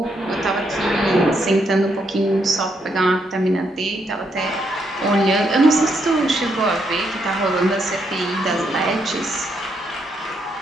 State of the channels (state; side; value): normal; both; correlation 0.77